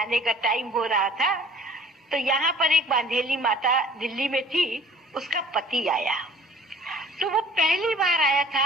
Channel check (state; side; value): normal; both; correlation 0.50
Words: का टाइम हो रहा था, तो यहाँ पर एक बांधेली माता दिल्ली में थी, उसका पति आया। तो वो पहली बार आया